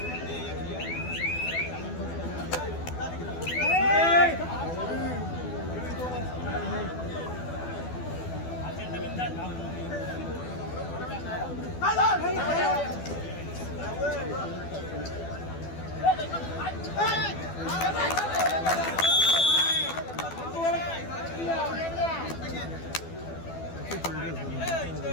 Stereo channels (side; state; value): right; late; 12 ms